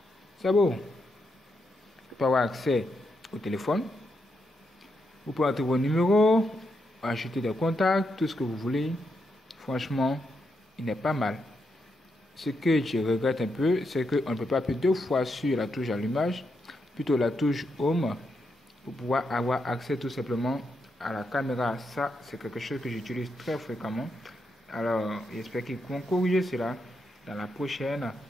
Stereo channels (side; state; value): both; normal; correlation 0.82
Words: C'est beau. Vous pouvez avoir accès au téléphone. Vous pouvez entrer vos numéros, ajouter des contacts, tout ce que vous voulez. Franchement, il n'est pas mal. Ce que je regrette un peu, c'est qu'on ne peut pas appuyer 2 fois sur la touche allumage, plutôt la touche Home, pour pouvoir avoir accès tout simplement à la caméra. Ça, c'est quelque chose que j'utilise très fréquemment. Alors, j'espère qu'ils vont corriger cela dans la prochaine